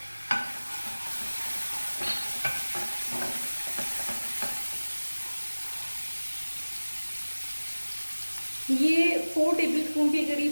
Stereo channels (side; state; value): both; inverted; correlation -1.00